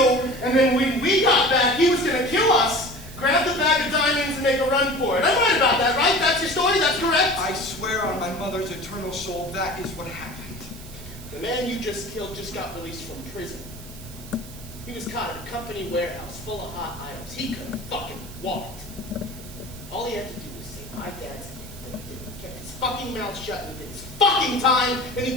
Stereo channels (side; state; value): right; noise; hiss, 17 dB below the sound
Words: and then when we got back, he was going to kill us, grab the bag of diamonds, and make a run for it. I'm right about that, right? That's your story? That's correct? I swear on my mother's eternal soul, that is what happened. The man you just killed just got released from prison. He was caught at a company warehouse full of hot items. He couldn't fucking walked. All he had to do was say, my dad's in, but he didn't. He kept his fucking mouth shut and he did his fucking time, and he